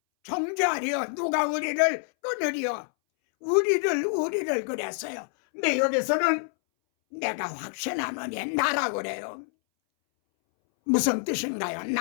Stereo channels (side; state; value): right; silent; 60 dB below the other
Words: 정죄하리요? 누가 우리를 끊으리요? 우리를 그랬어요. 근데 여기서는 내가 확신하노니 나라고 그래요. 무슨 뜻인가요?